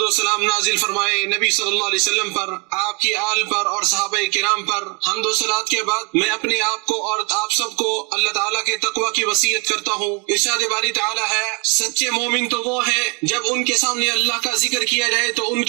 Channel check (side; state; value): left; quieter; 33.1 dB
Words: و سلام نازل فرمائے نبی صلی اللہ علیہ وسلم پر، آپ کی آل پر اور صحابہ کرام پر۔ حمد و صلات کے بعد میں اپنے آپ کو اور آپ سب کو اللہ تعالیٰ کے تقوی کی وصیت کرتا ہوں۔ ارشاد باری تعالیٰ ہے، سچے مومن تو وہ ہیں جب ان کے سامنے اللہ کا ذکر کیا جائے تو ان